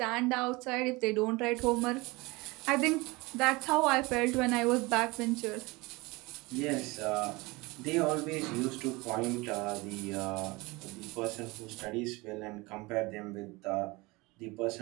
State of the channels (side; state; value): left; quieter; 23.7 dB